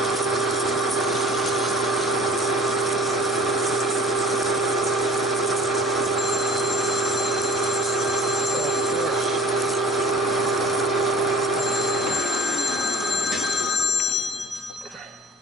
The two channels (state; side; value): normal; both; correlation 0.46